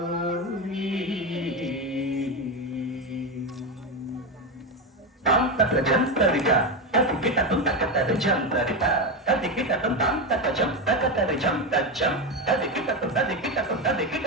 तत्र जंतरिका ततिकिटतं तकतर जंतरिका ततिकिटतं तकजं तकतर जं तजं ततिकिटतं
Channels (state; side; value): normal; both; correlation 0.14